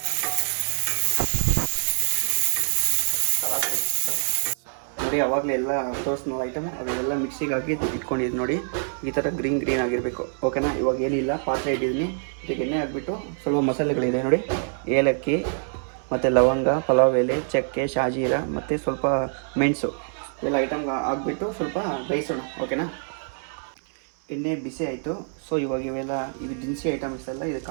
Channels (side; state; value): left; silent; 62 dB below the other